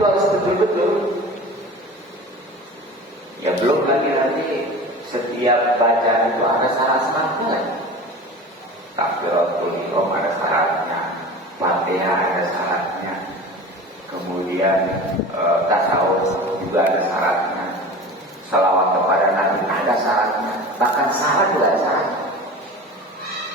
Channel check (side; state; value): both; normal; correlation 0.35